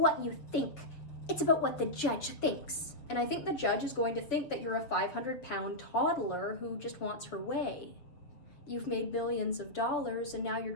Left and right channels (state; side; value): late; right; 7.0 ms